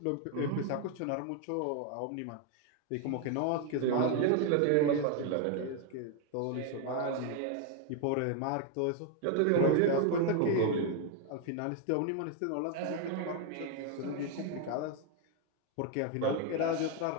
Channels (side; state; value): both; different; correlation 0.01